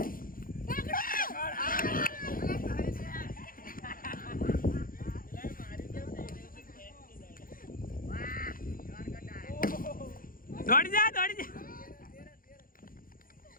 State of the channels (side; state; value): right; late; 0.41 ms